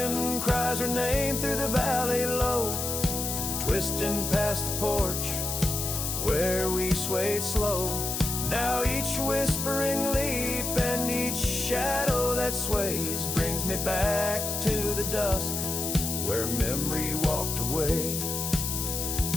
cries her name through the valley low, twisting past the porch where we swayed slow. Now each whispering leaf and each shadow that sways brings me back to the dusk where memory walked away.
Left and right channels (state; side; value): noise; left; hiss, 2 dB below the sound